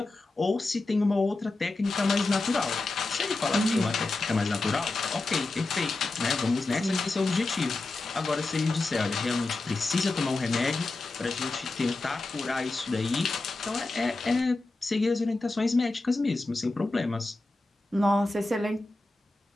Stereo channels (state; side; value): quieter; right; 3.1 dB